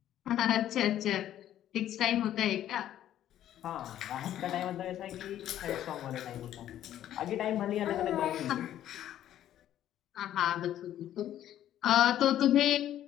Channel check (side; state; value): right; quieter; 11.8 dB